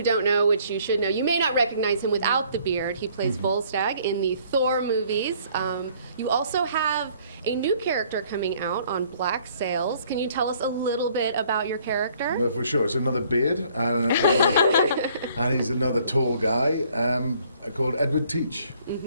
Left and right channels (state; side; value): inverted; both; correlation -0.61